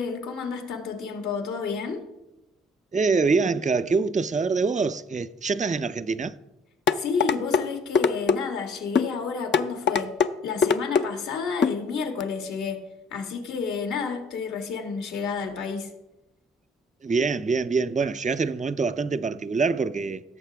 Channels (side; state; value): both; normal; correlation 0.56